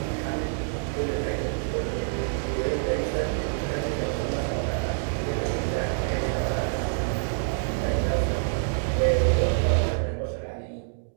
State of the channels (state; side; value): silent; left; digital silence